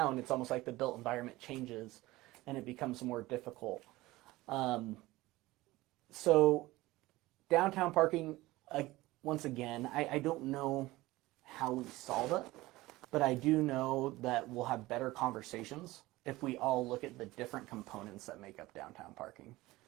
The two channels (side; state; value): left; quieter; 18.8 dB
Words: it's almost like the built environment changes and it becomes more difficult. So downtown parking, once again, I don't know how we solve it, but I do know that we'll have better conversations if we all look at the different components that make up downtown parking.